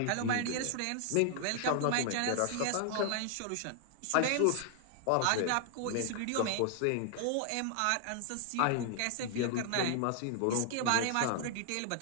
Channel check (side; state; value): both; different; correlation 0.00